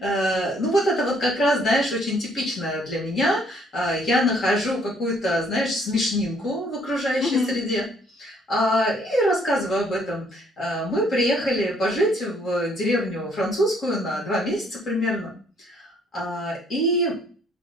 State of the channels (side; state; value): both; normal; correlation 0.65